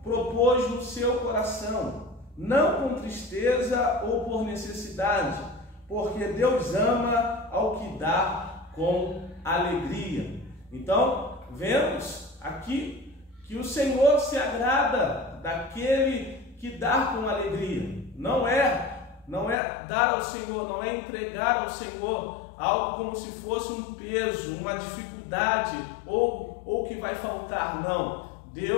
propôs no seu coração, não com tristeza ou por necessidade, porque Deus ama ao que dá com alegria. Então, vemos aqui que o Senhor se agrada daquele que dá com alegria. Não é dar ao Senhor, não é entregar ao Senhor algo como se fosse um peso, uma dificuldade ou que vai faltar, não.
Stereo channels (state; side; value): drops out; right; at 19.6 s